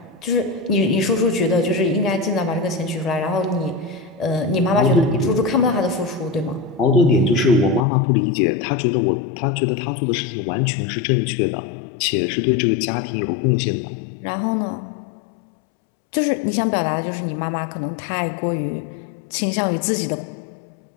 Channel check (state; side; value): drops out; right; at 7.9 s